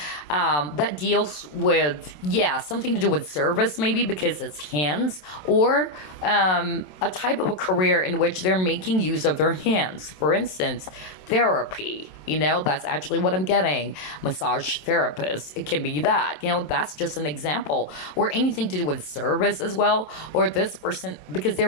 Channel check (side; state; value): right; late; 27 ms